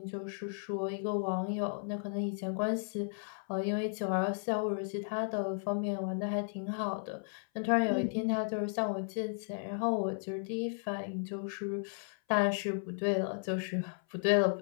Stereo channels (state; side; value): silent; right; 55 dB below the other